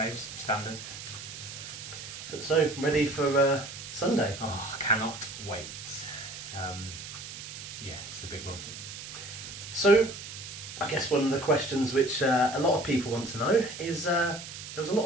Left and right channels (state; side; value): noise; right; hiss, 11 dB below the sound